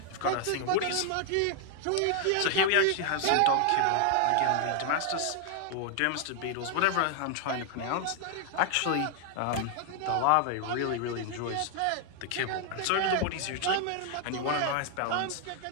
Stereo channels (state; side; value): different; both; correlation 0.00